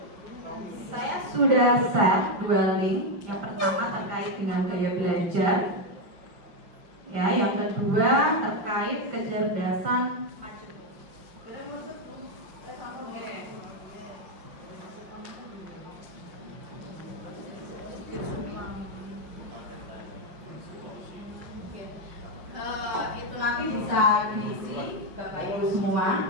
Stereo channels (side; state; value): left; late; 5.7 ms